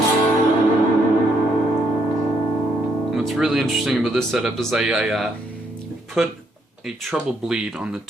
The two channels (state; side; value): normal; both; correlation 0.73